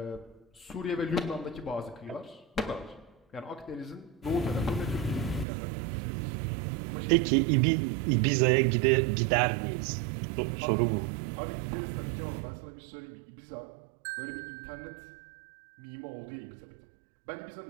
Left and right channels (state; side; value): drops out; left; at 5.5 s